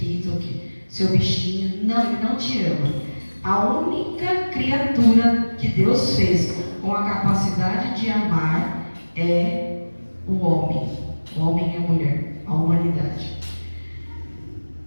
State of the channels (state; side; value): inverted; both; correlation -1.00